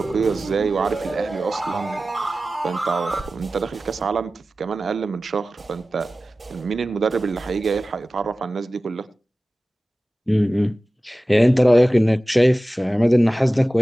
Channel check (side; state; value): both; normal; correlation 0.96